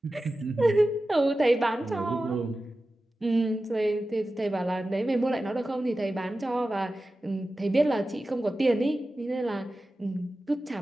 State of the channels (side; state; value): both; normal; correlation 0.94